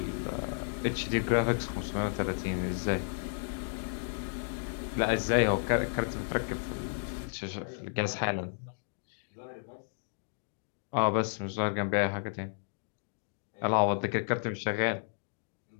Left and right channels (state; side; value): silent; right; digital silence